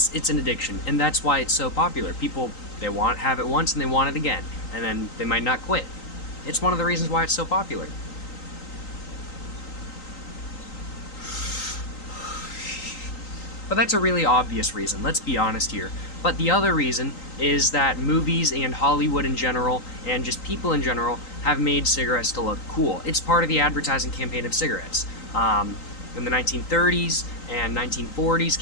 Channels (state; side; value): late; right; 3.9 ms